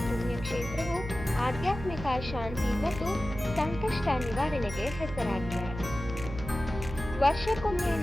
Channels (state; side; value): noise; right; hum, 9 dB below the sound